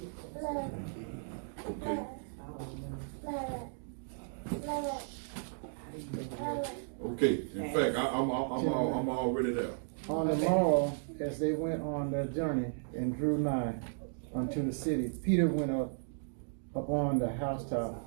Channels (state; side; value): silent; left; digital silence